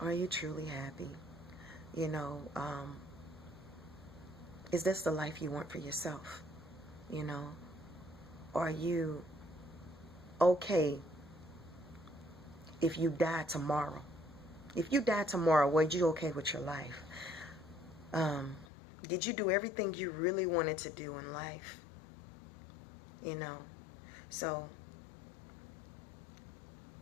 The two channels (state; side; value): drops out; right; at 18.7 s